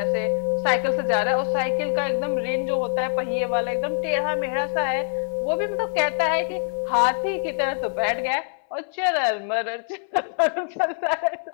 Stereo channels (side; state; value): right; silent; 62 dB below the other